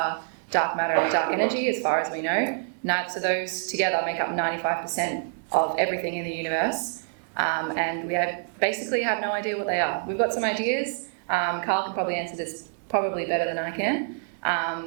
dark matter and dark energy, as far as we know. So those together make up 95% of everything in the universe, and we basically have no idea what they are. We've got some ideas. Carl can probably answer this probably better than I can.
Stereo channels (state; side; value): silent; left; digital silence